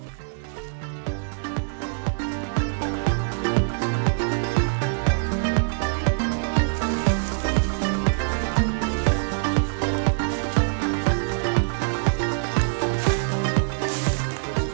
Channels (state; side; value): silent; left; digital silence